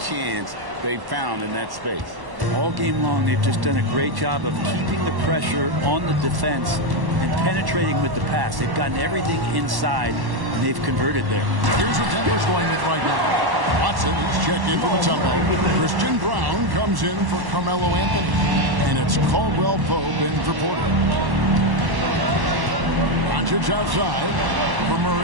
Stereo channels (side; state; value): left; late; 1.1 ms